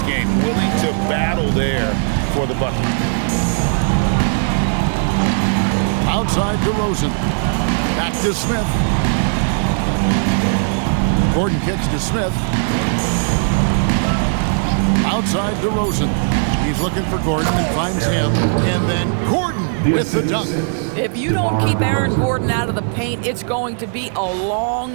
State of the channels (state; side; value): silent; left; 67 dB below the other